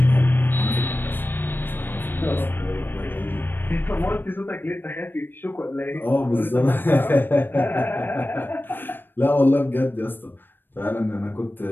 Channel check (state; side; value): late; right; 0.096 ms